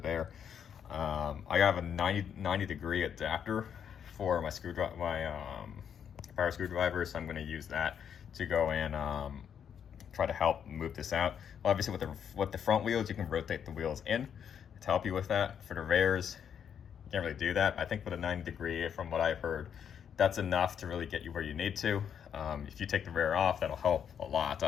I have a 90 degree adapter for my screwdriver, power screwdriver, so I'm going to use that to go in, try to help move this out. Well, obviously with the front wheels, you can rotate the wheels in to help you with that. For the rears, you can't really do that. I think with a 90 degree, from what I've heard, that's enough to really get you where you need to. If you take the rear off, that'll help a lot,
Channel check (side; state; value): right; quieter; 8.2 dB